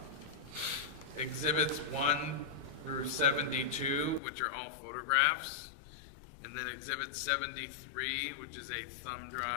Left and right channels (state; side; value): drops out; right; at 4.2 s